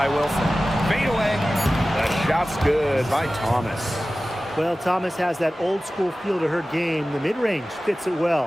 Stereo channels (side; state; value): both; normal; correlation 0.96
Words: Wilson. Fade away. The shot's good by Thomas. Well, Thomas has that old school feel to her game. The mid-range fits it